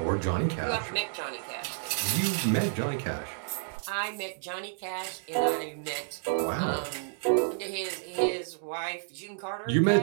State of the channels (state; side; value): silent; left; digital silence